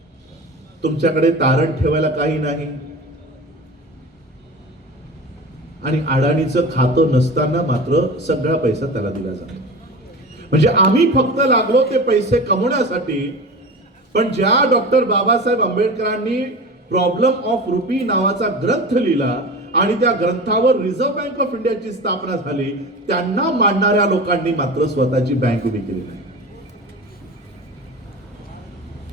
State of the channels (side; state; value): both; normal; correlation 0.32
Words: तुमच्याकडे तारण ठेवायला काही नाही, आणि अडाणीचं खातं नसताना मात्र सगळा पैसा त्याला दिला जातो. म्हणजे आम्ही फक्त लागलो ते पैसे कमवण्यासाठी. पण ज्या डॉक्टर बाबासाहेब आंबेडकरांनी प्रॉब्लेम ऑफ रुपी नावाचा ग्रंथ लिहिला आणि त्या ग्रंथावर रिझर्व्ह बँक ऑफ इंडियाची स्थापना झाली, त्यांना मानणाऱ्या लोकांनी मात्र स्वतःची बँक उभी केली नाही.